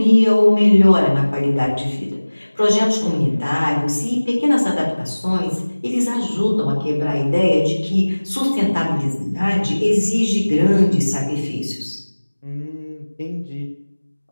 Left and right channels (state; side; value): inverted; both; correlation -1.00